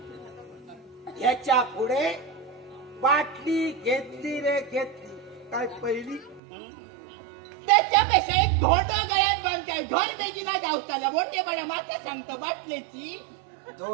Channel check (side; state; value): left; drops out; at 6.4 s